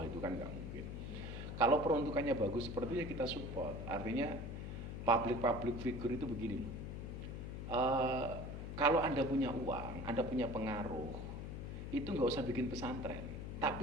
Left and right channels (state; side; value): noise; left; hum, 6 dB below the sound